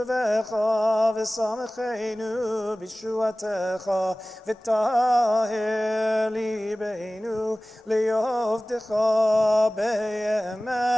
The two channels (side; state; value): both; normal; correlation 0.98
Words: ושמחנו בישועתך וטהר ליבנו לעבדך